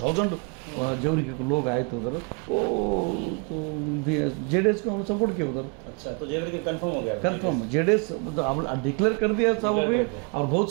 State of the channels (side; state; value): left; quieter; 34.2 dB